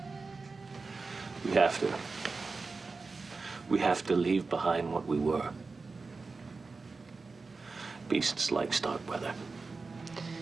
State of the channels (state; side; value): quieter; left; 4.1 dB